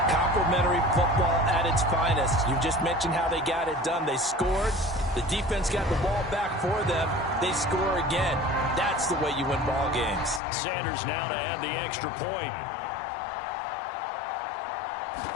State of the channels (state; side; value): drops out; right; at 10.4 s